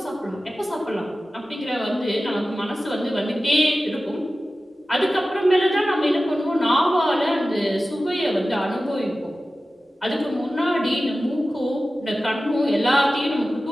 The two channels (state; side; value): normal; both; correlation 0.95